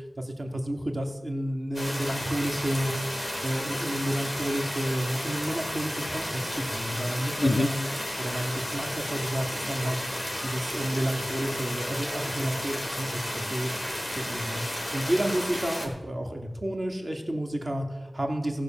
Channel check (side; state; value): both; normal; correlation 0.97